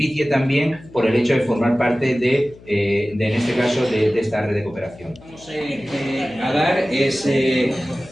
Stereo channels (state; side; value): noise; left; hum, 22 dB below the sound